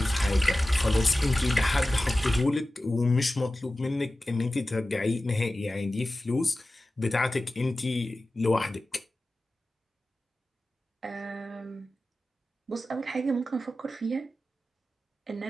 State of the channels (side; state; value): both; normal; correlation 0.95